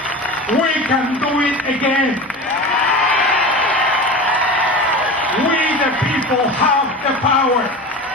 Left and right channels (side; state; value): both; normal; correlation 0.31